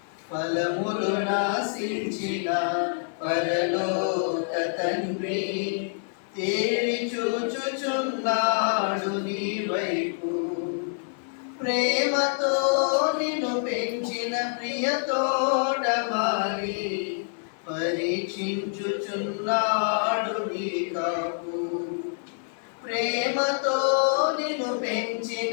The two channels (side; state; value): right; silent; 60 dB below the other